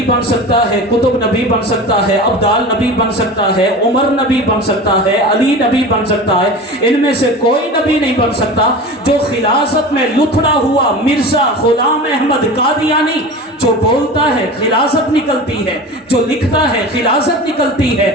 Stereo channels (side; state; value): both; normal; correlation 0.33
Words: بن سکتا ہے، کتب نبی بن سکتا ہے، ابدال نبی بن سکتا ہے، عمر نبی بن سکتا ہے، علی نبی بن سکتا ہے، ان میں سے کوئی نبی نہیں بن سکتا۔ جو خلاصت میں لتھڑا ہوا مرزا غلام احمد قادیانی جو بولتا ہے خلاصت نکلتی ہے، جو لکھتا ہے خلاصت نکلتی ہے،